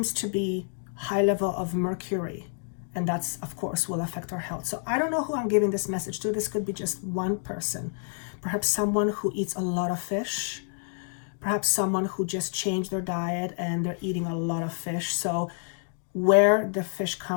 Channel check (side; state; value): right; silent; 59 dB below the other